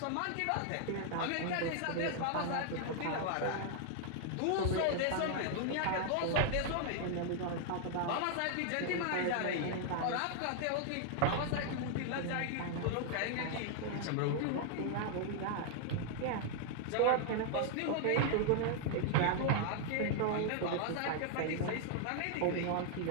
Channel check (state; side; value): different; both; correlation 0.00